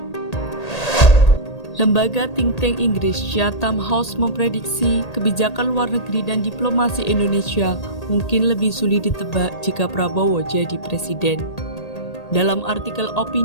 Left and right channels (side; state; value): right; late; 1.8 ms